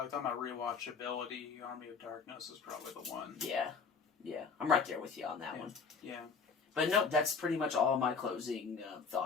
about rewatchability, Army of Darkness is probably the one. Yeah. I'm right there with you on that one. Yeah. But no, that's pretty much all my closing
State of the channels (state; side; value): quieter; right; 5.2 dB